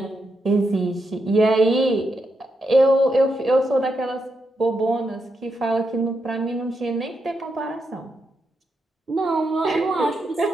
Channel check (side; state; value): both; normal; correlation 0.83